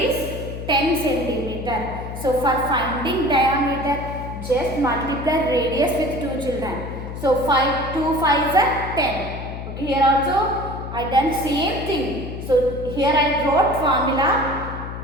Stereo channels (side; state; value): left; noise; hum, 8 dB below the sound